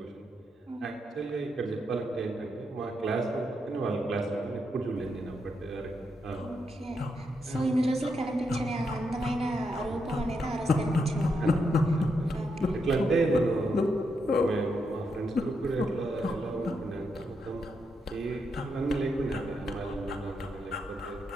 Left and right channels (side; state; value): both; normal; correlation 0.81